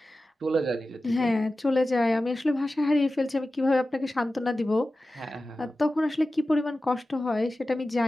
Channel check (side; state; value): both; normal; correlation 0.95